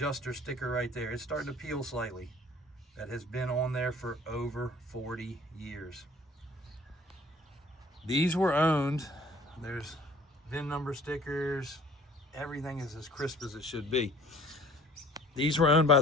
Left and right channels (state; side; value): normal; both; correlation 0.52